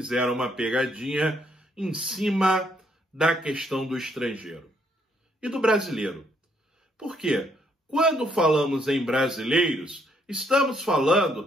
uma pegadinha em cima da questão do estrangeiro e do brasileiro. Por quê? Quando falamos em brasileiros, estamos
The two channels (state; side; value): normal; both; correlation 0.71